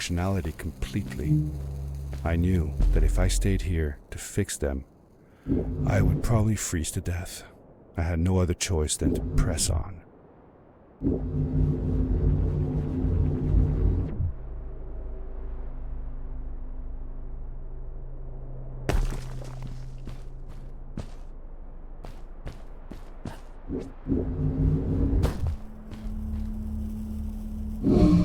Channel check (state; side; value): identical; both; correlation 1.00